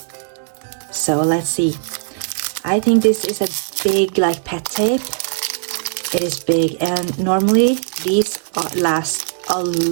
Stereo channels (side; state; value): left; silent; digital silence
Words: let's see. I think this is a big pet tape. It is big, and normally these last a